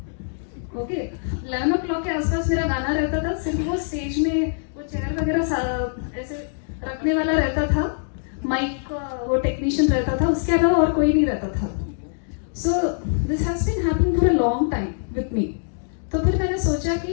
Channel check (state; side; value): silent; right; digital silence